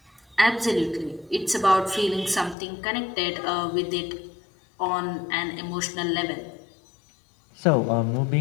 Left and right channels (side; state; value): right; drops out; at 2.6 s